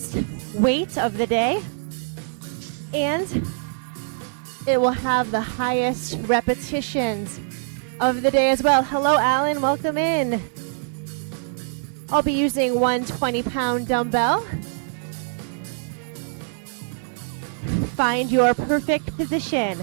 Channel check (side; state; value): left; silent; digital silence